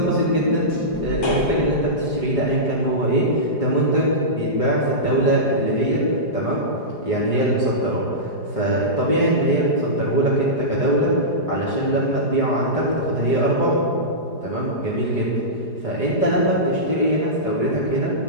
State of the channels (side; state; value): right; late; 4.9 ms